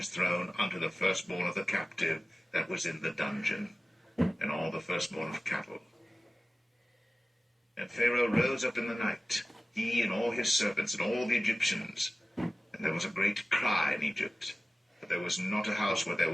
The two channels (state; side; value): normal; both; correlation 0.97